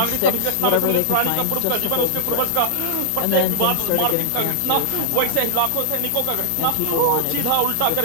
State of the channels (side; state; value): both; different; correlation 0.00